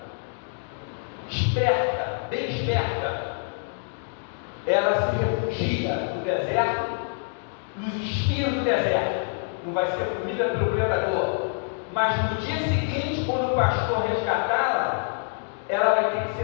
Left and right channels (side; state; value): right; silent; digital silence